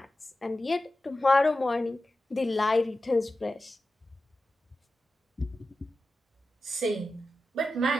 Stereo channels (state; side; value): normal; both; correlation 0.93